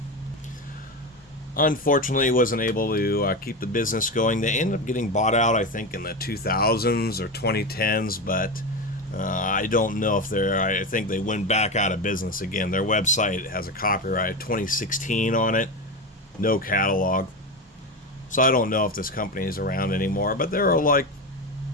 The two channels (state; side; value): normal; both; correlation 0.19